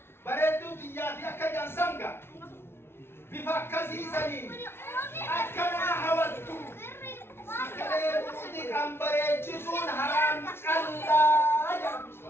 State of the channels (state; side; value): late; right; 0.12 ms